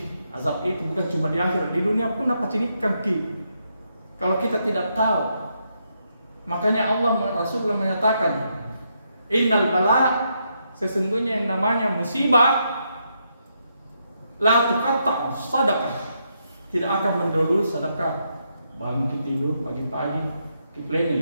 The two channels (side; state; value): both; inverted; correlation -0.79